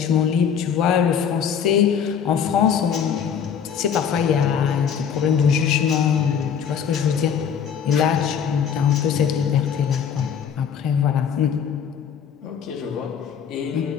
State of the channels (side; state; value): right; quieter; 7.7 dB